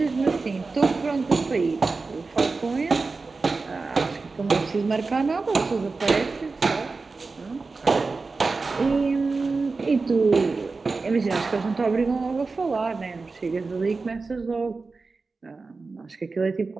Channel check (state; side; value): quieter; left; 4.0 dB